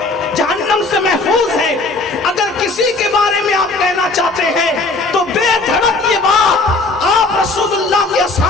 جہنم سے محفوظ ہے، اگر کسی کے بارے میں آپ کہنا چاہتے ہیں تو بے دھڑک یہ بات آپ رسول اللہ کے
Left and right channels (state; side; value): quieter; right; 3.3 dB